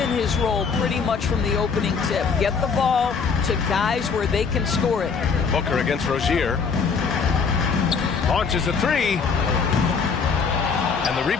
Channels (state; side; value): quieter; right; 5.6 dB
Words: his role pretty much from the opening tip. Get the ball to guys where they can score it. Booker against Rozier. Launches a 3. And the